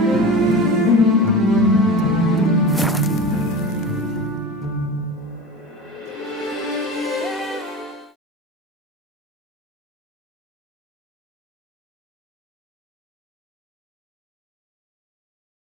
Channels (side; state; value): both; normal; correlation 0.31